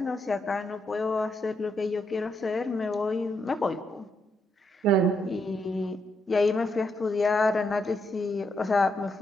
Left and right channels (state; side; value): normal; both; correlation 0.79